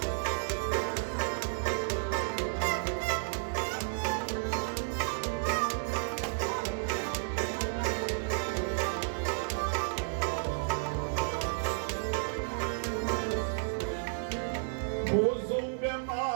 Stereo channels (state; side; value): silent; left; digital silence